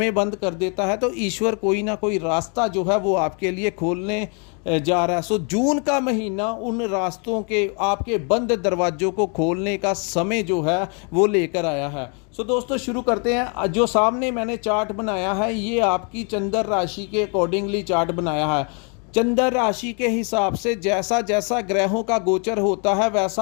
बंद कर देता है तो ईश्वर कोई ना कोई रास्ता जो है वो आपके लिए खोलने जा रहा है। सो जून का महीना उन रास्तों के, आपके बंद दरवाजों को खोलने का समय जो है वो लेकर आया है। सो दोस्तों, शुरू करते हैं। जो सामने मैंने चार्ट बनाया है ये आपकी चंद्र राशि के अकॉर्डिंगली चार्ट बनाया है। चंद्र राशि के हिसाब से जैसा जैसा ग्रहों का गोचर होता है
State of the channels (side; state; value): right; quieter; 36.8 dB